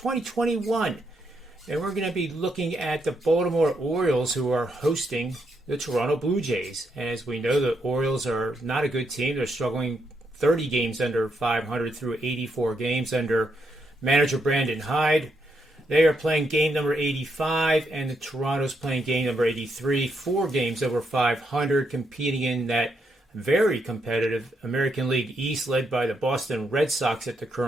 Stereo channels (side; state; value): both; normal; correlation 0.79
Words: And we're going to be looking at the Baltimore Orioles, who are hosting the Toronto Blue Jays. And as we know, the Orioles are not a good team. They're struggling 30 games under 500 through 84 games under manager Brandon Hyde. They are playing game number 85, and the Toronto's playing game number 83, 4 games over 500, competing in that very competitive American League East, led by the Boston Red Sox at the